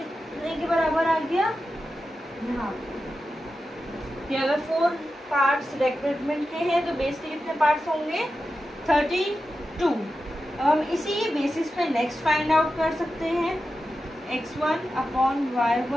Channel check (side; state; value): both; normal; correlation 0.91